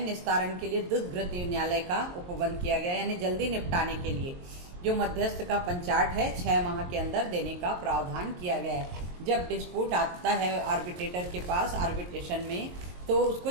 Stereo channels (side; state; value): left; late; 23 ms